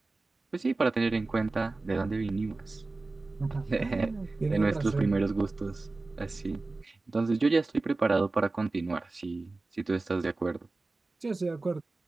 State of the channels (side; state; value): left; quieter; 3.4 dB